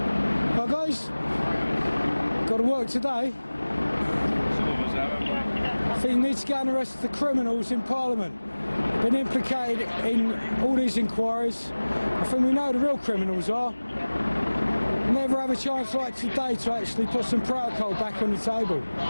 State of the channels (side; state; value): both; inverted; correlation -1.00